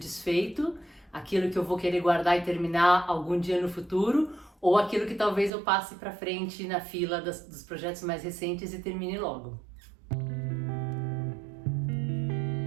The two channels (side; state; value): left; drops out; at 5.5 s